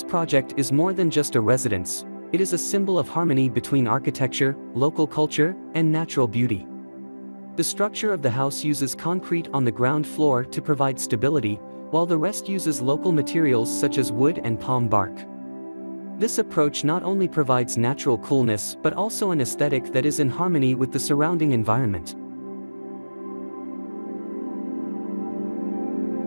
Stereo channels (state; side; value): inverted; both; correlation -1.00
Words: project is more than just a residence, it is a symbol of harmony between architecture, local culture, and natural beauty. The structure of the house uses concrete on the ground floor to provide stability, while the rest uses local materials such as wood and palm bark. This approach not only provides natural coolness but also an aesthetic that is in harmony with the surrounding environment.